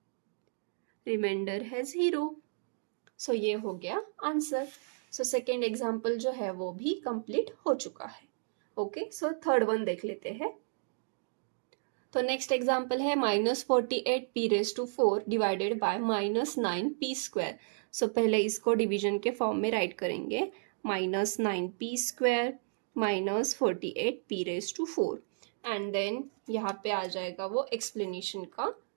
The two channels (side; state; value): left; silent; digital silence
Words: रिमाइंडर है 0। सो ये हो गया आंसर। सो सेकेंड एग्जाम्पल जो है वो भी कंप्लीट हो चुका है। ओके, सो थर्ड वन देख लेते हैं। तो नेक्स्ट एग्जाम्पल है -48p⁴ डिवाइडेड बाय -9p²। सो पहले इसको डिवीजन के फॉर्म में राइट करेंगे, -9p² -48p⁴, एंड देन यहाँ पे आ जाएगा वो एक्सप्लेनेशन का